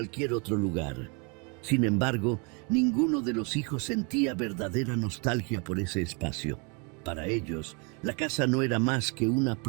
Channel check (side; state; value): left; quieter; 33.6 dB